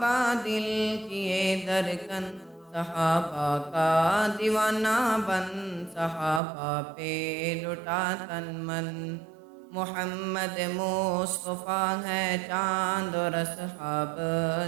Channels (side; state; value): left; drops out; at 6.4 s